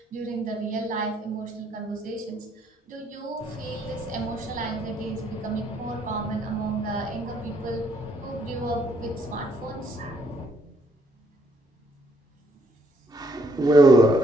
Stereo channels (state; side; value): normal; both; correlation 0.69